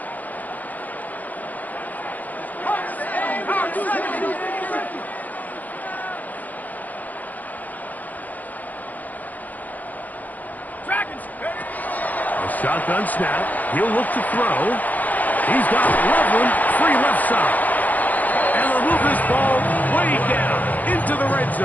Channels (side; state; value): right; late; 0.081 ms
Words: Shotgun snap. He'll look to throw. He's got Loveland free left side. And they'll move this ball way down into the red